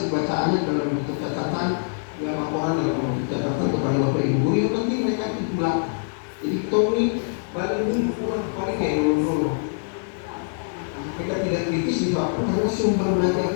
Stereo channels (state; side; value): silent; right; digital silence